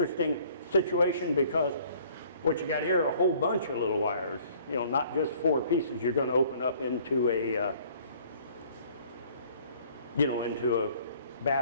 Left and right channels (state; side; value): inverted; both; correlation -0.56